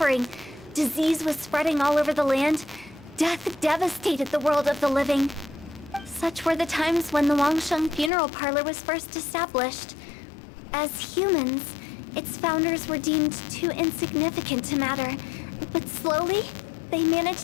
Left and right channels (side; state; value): right; drops out; at 8.1 s